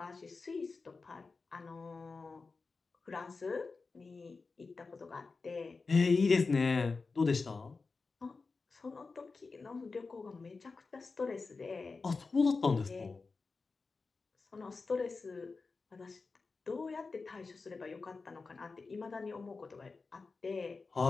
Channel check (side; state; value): right; quieter; 4.2 dB